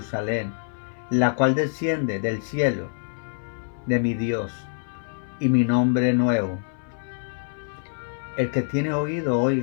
la cual desciende del cielo de mi Dios, y mi nombre nuevo. El que tiene oído,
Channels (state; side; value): silent; right; 59 dB below the other